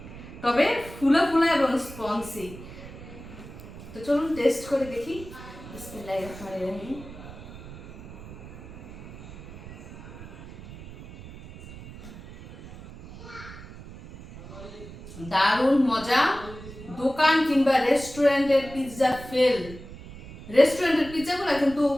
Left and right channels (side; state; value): right; noise; rumble, 15 dB below the sound